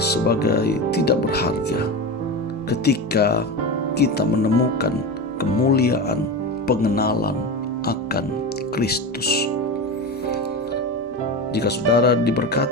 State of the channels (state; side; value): normal; both; correlation 0.23